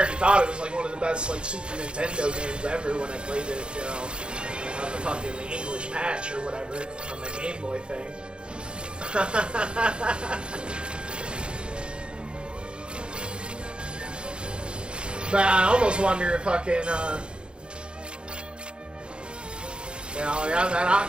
thought it was like one of the best, like, Super Nintendo games ever when I played it, you know, on the fucking English patch or whatever, on the Game Boy thing. But I almost wonder if fucking, you know, yeah, that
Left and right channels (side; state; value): left; late; 0.054 ms